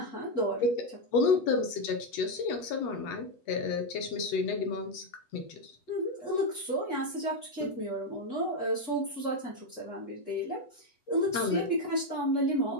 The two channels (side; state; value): right; late; 8.1 ms